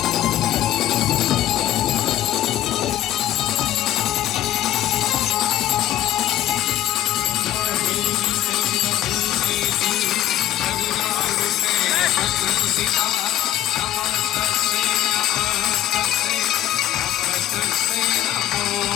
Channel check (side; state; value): right; quieter; 12.8 dB